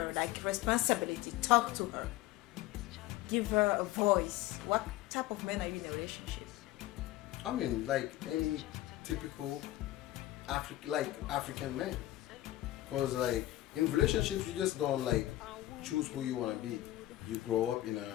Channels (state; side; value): quieter; right; 15.8 dB